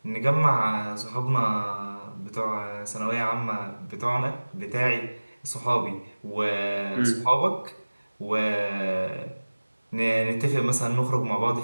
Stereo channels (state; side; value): inverted; both; correlation -1.00